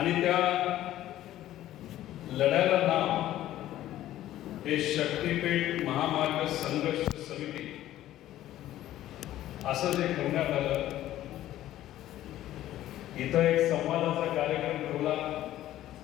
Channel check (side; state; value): right; quieter; 13.6 dB